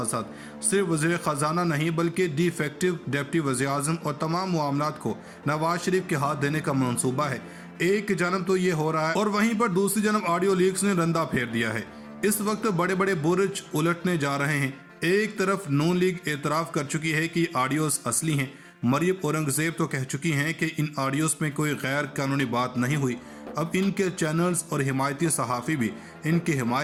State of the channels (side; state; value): both; identical; correlation 1.00